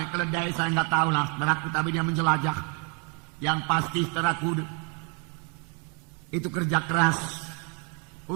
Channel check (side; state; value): left; quieter; 36.0 dB